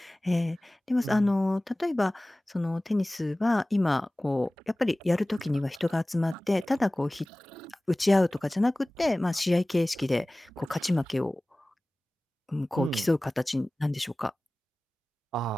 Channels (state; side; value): normal; both; correlation 0.98